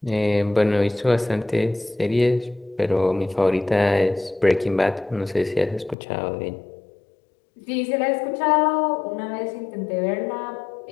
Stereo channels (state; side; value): drops out; right; at 6.0 s